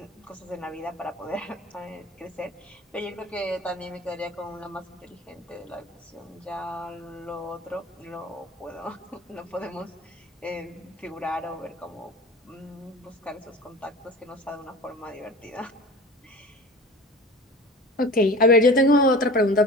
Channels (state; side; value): normal; both; correlation 0.38